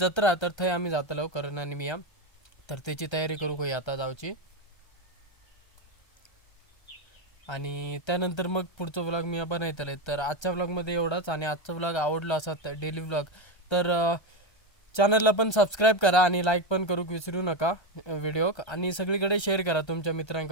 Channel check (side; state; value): right; late; 1.3 ms